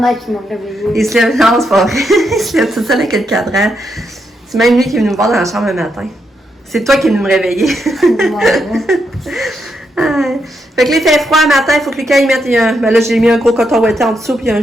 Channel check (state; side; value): normal; both; correlation 0.81